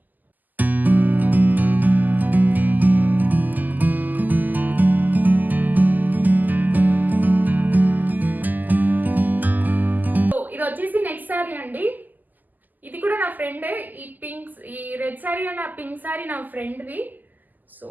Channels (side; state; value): left; late; 0.084 ms